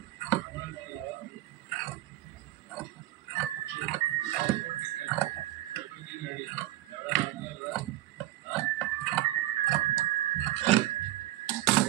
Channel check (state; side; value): quieter; left; 15.7 dB